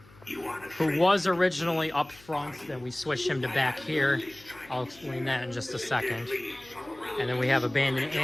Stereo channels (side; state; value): left; noise; hum, 25 dB below the sound